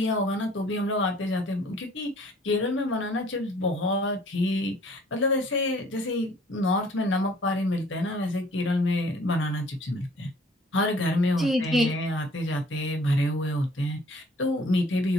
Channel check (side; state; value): both; normal; correlation 0.55